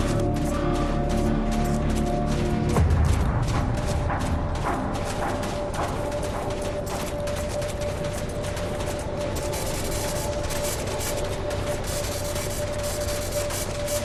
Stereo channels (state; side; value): identical; both; correlation 1.00